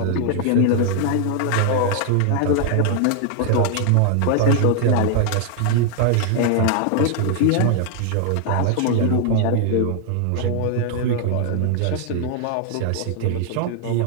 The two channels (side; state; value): both; different; correlation 0.00